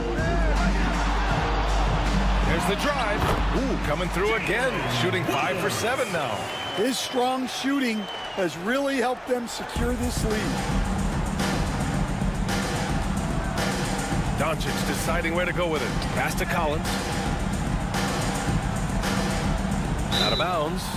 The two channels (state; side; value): identical; both; correlation 1.00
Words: There's the drive. Ooh, coming through again. Shooting 5 for 7 now. His strong shooting has really helped them secure this lead. Doncic deciding where to go with it. Pass to Collins. Out of bounds